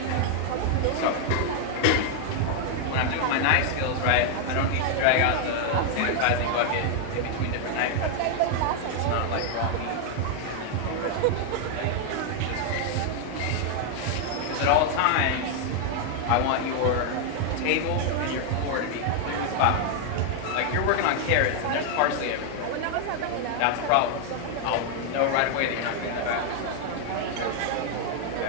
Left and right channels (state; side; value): different; both; correlation 0.00